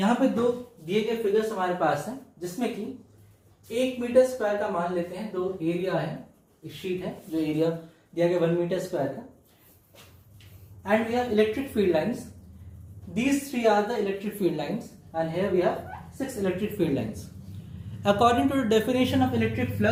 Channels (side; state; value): both; identical; correlation 1.00